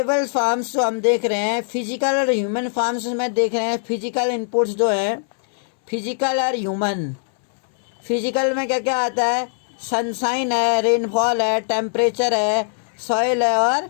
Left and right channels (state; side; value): silent; right; 63 dB below the other